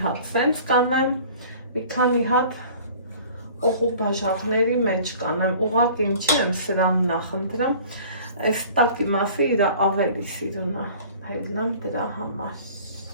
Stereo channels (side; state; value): both; inverted; correlation -0.47